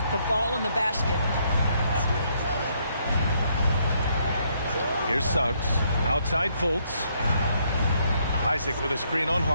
the ball in the basket. Here's Suggs. Outside Fultz. Isaac with a screen on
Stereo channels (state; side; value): inverted; both; correlation -0.71